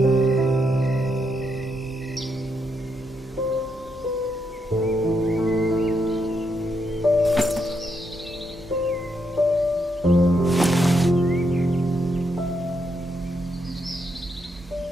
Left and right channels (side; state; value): both; normal; correlation 0.79